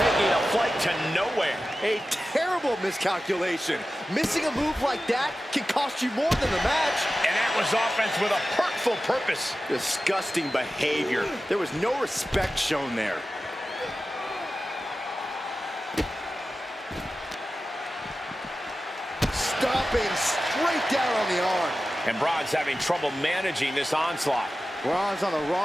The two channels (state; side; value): normal; both; correlation 0.94